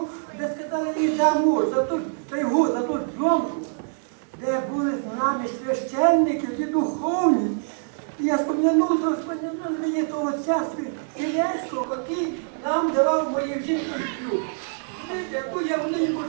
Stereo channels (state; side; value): silent; left; 62 dB below the other